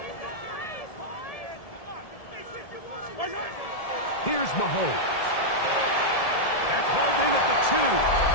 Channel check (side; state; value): right; late; 1.7 ms